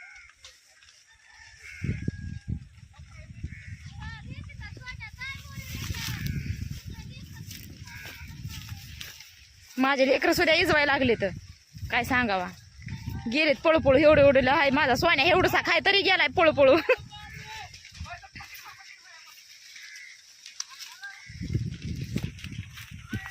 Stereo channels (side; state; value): both; identical; correlation 1.00